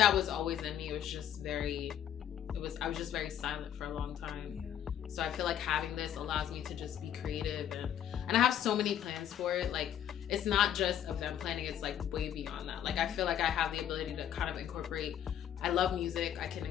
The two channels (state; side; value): quieter; right; 10.2 dB